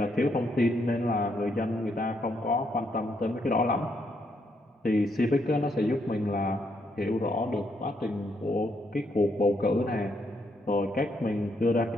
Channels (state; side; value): normal; both; correlation 0.76